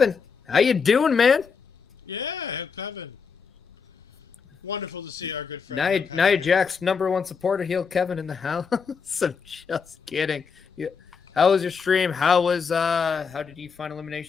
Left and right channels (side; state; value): right; quieter; 5.7 dB